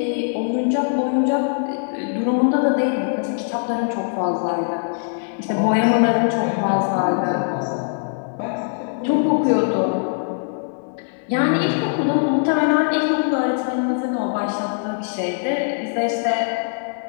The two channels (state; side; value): silent; right; digital silence